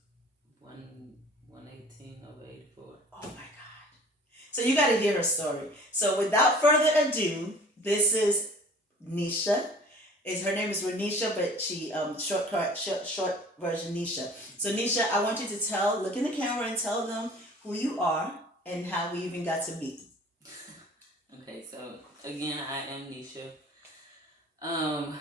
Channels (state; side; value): normal; both; correlation 0.47